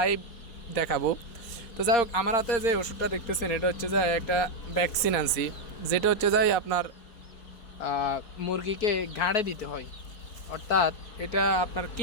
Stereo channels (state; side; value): late; right; 4.3 ms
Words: দেখাবো। তো যাই হোক, আমার হাতে যে ওষুধটা দেখতেছেন এটা হচ্ছে যে একটা ভ্যাকসিন আনছি, যেটা হচ্ছে যাই আপনার মুরগিকে ঘাড়ে দিতে হয়, অর্থাৎ এটা আপনার